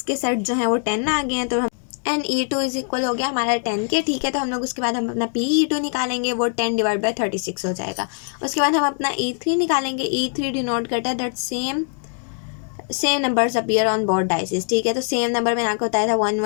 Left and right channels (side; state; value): right; silent; 56 dB below the other